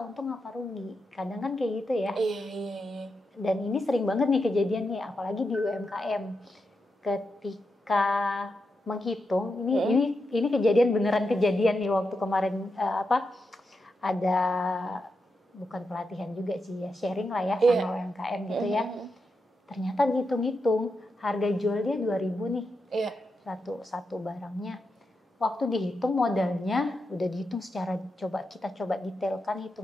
untung apa rugi. Kadang kan kayak gitu ya. Iya. Dan ini sering banget nih kejadian nih, apalagi di UMKM. Ketika menghitung, ini kejadian, beneran kejadian nih waktu kemarin ada bukan pelatihan juga sih ya, sharing lah ya sama UMKM gitu ya. Ternyata dihitung-hitung harga jual dia 2.000 nih. Satu barangnya. waktu dihitung modalnya udah dihitung secara kita coba detailkan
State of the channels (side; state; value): both; normal; correlation 0.86